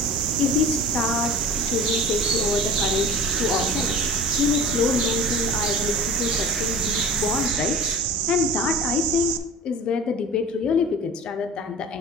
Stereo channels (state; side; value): normal; both; correlation 0.38